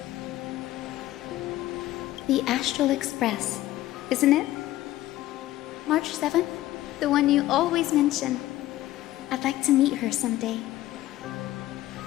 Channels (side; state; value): right; quieter; 15.4 dB